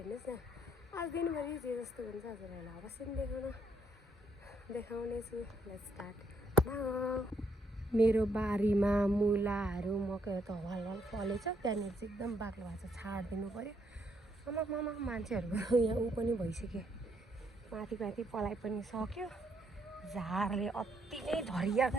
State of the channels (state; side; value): normal; both; correlation 0.72